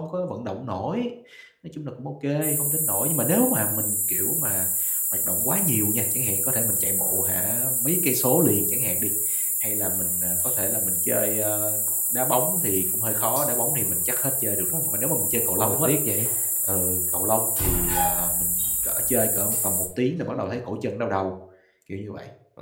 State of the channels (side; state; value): both; identical; correlation 1.00